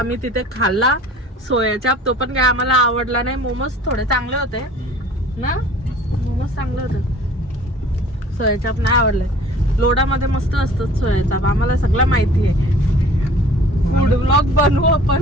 तिथे खाल्ला सोया चाप. तो पण काय आम्हाला आवडला नाही. मोमोज थोडे चांगले होते ना. मोमोज चांगले होते. सोया चाप नाही आवडले. लोडामध्ये मस्त असतात सोया चाप. आम्हाला सगळं माहिती आहे. फूड ब्लॉग बनवू आपण.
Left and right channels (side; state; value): both; normal; correlation 0.49